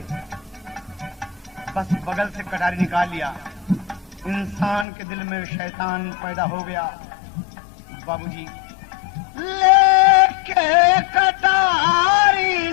बस बगल से कटारी निकाल लिया। इंसान के दिल में शैतान पैदा हो गया। बाबूजी लेके कटारी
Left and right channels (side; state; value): right; drops out; at 4.9 s